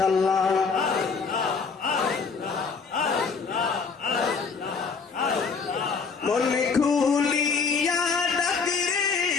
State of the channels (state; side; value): quieter; right; 5.2 dB